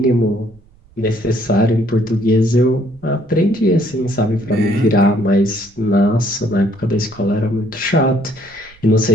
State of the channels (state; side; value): noise; right; rumble, 28 dB below the sound